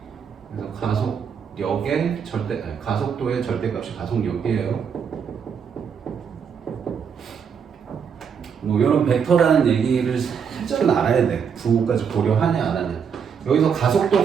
그래서 가속도의 절대값이 가속력이에요. 뭐 이런 벡터라는 얘기를 살짝은 알아야 돼. 부호까지 고려하냐 안 하냐. 여기서 가속도,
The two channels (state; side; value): quieter; left; 6.9 dB